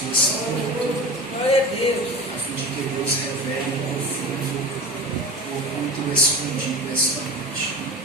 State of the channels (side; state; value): both; normal; correlation 0.31